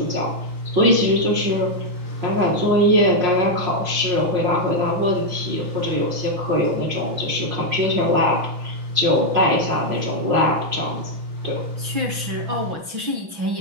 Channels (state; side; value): late; left; 6.0 ms